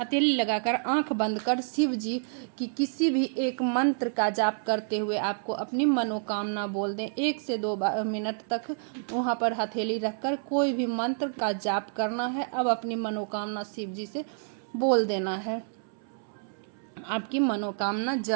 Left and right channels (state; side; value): silent; left; 59 dB below the other